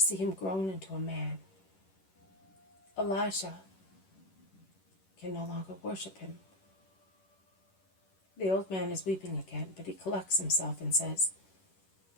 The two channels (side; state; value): right; late; 11 ms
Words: him grown into a man. Elisha can no longer worship him. The old man is weeping again, but he collects himself and says,